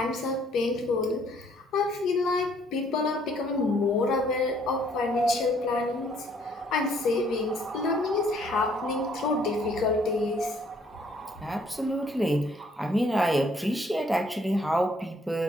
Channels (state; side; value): normal; both; correlation 0.64